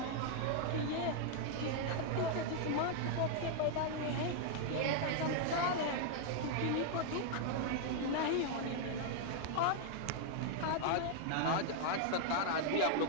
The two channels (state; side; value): different; both; correlation 0.00